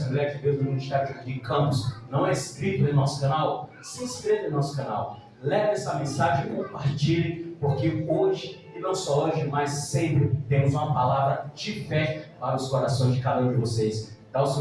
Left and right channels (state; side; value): identical; both; correlation 1.00